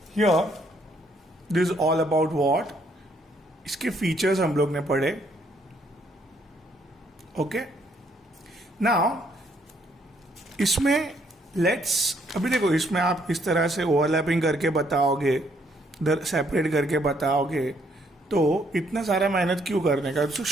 here this is all about what. इसके फीचर्स हम लोग ने पढ़े. ओके, नाउ इसमें अभी देखो, इसमें आप इस तरह से ओवरलैपिंग करके बताओगे, इधर सेपरेट करके बताओगे, तो इतना सारा मेहनत क्यों करने का? तो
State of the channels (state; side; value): normal; both; correlation 0.69